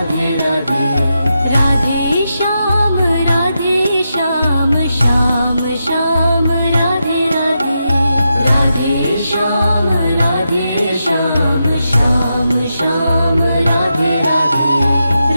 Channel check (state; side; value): inverted; both; correlation -0.86